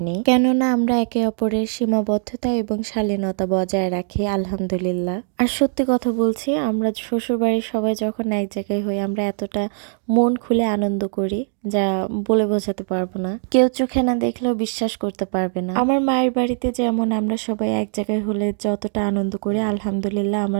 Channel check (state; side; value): silent; left; digital silence